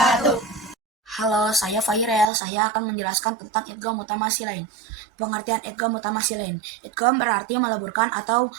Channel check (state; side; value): drops out; left; at 2.2 s